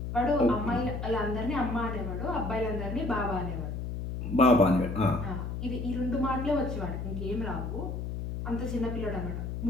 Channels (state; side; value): noise; left; hum, 5 dB below the sound